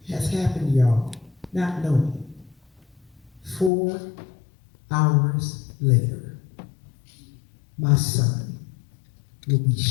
has happened, y'all, not knowing. 4 hours later, my son will be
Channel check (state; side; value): drops out; right; at 3.7 s